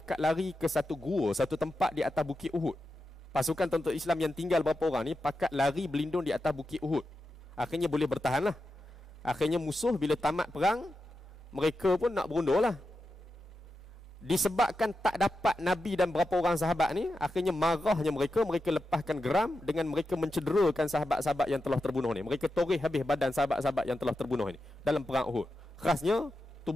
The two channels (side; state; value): both; normal; correlation 0.89